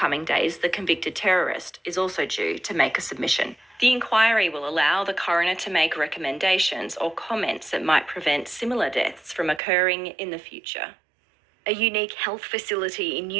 days, the convicted terrorist is also due to make a submission. The inquiry will allow the coroner to make recommendations or comments that might prevent similar deaths from occurring in the future. A unique health facility in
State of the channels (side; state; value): left; drops out; at 9.6 s